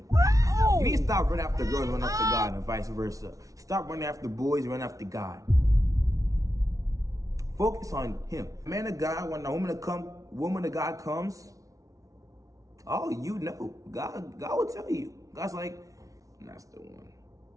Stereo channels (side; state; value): left; late; 0.17 ms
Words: Wow. You need to stop running after girls, run after God, and vice versa. Stop running after boys, run after God. Focus on Him. Man of God, when a woman of God comes, God will tell you. God's like, that's the one.